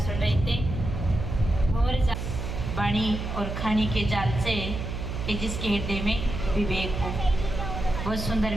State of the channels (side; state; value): right; noise; hum, 5 dB below the sound